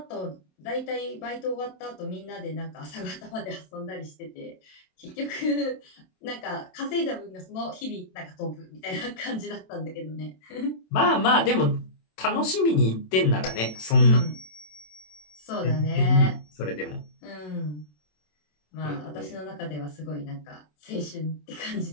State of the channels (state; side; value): late; right; 27 ms